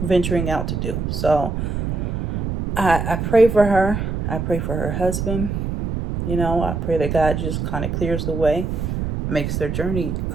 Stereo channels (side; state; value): right; noise; rumble, 3 dB below the sound